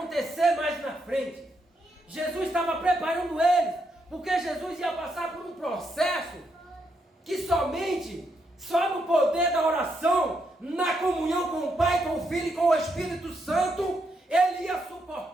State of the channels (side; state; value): both; normal; correlation 0.79